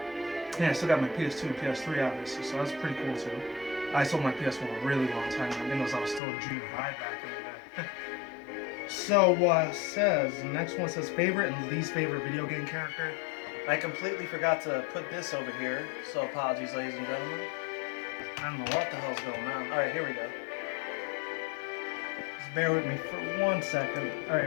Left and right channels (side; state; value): right; drops out; at 6.2 s